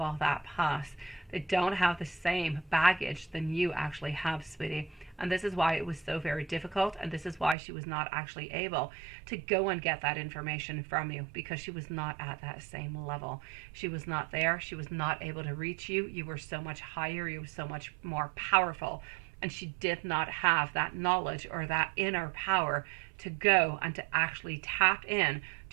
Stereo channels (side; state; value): left; drops out; at 7.6 s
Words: all that past. They don't have the same baggage than you actually have, sweetie. And this is why it was so very difficult, and this is why she was not actually able to go and get that information from you, because she was not at that same level. She was not there. She was not able to reach you. You were so much higher. You were so much more powerful. And she did not have that knowledge or that inner power to go and to actually tap in